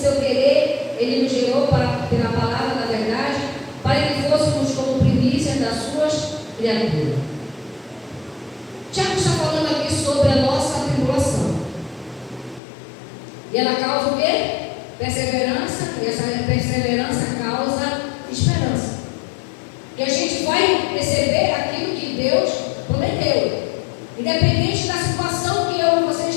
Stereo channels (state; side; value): drops out; right; at 12.6 s